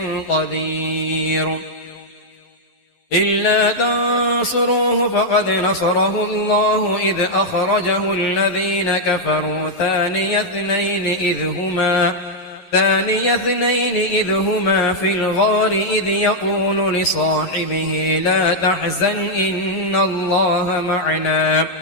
قدير إلا تنصروه فقد نصره الله إذ أخرجه الذين كفروا ثاني اثنين إذ هما في الغار إذ يقول لصاحبه لا تحزن إن الله معنا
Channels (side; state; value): right; late; 11 ms